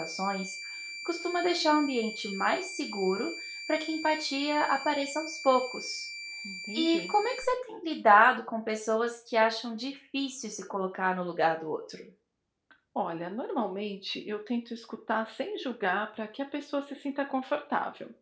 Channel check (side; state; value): both; identical; correlation 1.00